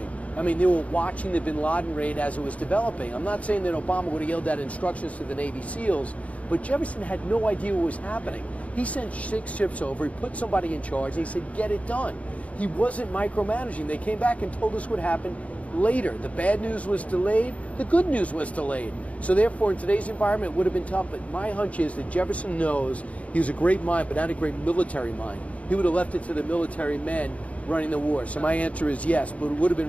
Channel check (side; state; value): right; late; 0.066 ms